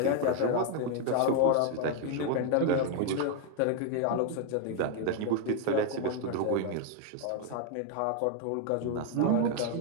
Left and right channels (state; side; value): different; both; correlation 0.01